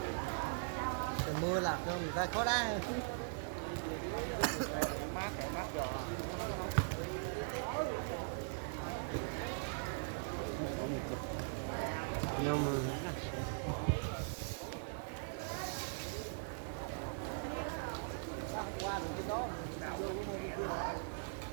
mưa là người ta có đá. Nhưng mà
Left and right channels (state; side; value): silent; left; 51 dB below the other